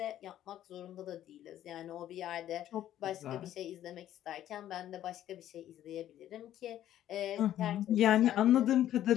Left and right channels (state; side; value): quieter; right; 12.0 dB